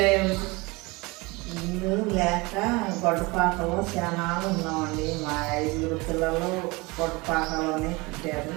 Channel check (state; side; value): quieter; left; 24.7 dB